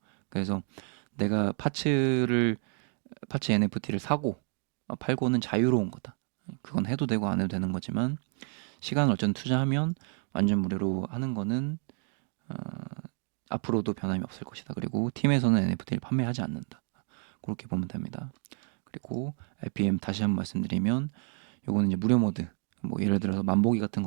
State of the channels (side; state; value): left; quieter; 37.3 dB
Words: 그래서 내가 파츠 NFT를 사고 팔고는 자유로운 거다. 그건 해도 되고 안 해도 되는 거지만 시간을 어쨌든 투자하면 완전 무료로 하는 거는 앞으로도 변함이 없을 것이다. 그리고 팀에서는 NFT를 판매하지 않는다. 그렇게 보면 됩니다. 그리고 RPM 다시 한번 말씀드리면 요거는 이제 무료 모드, 뭐 예를 들어서 만보기 같은